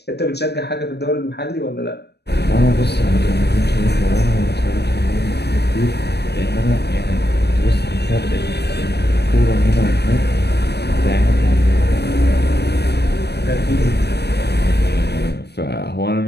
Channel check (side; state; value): right; late; 0.48 ms